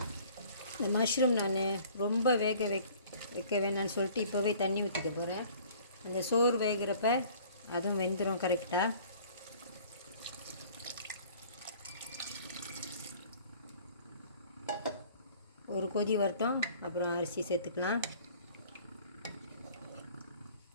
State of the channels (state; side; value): inverted; both; correlation -0.51